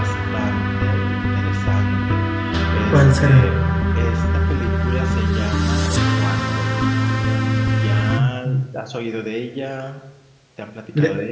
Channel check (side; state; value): both; identical; correlation 1.00